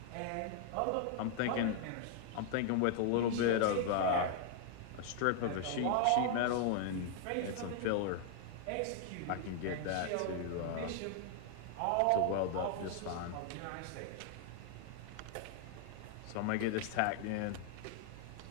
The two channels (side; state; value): both; different; correlation 0.00